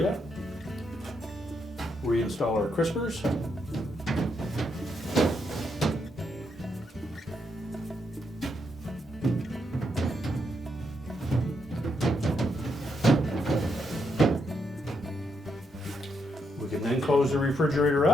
Reinstall our crispers. We can then close the refrigerator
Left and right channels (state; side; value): normal; both; correlation 0.79